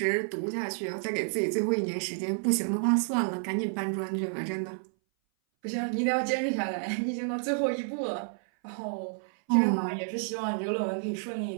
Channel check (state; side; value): silent; left; 58 dB below the other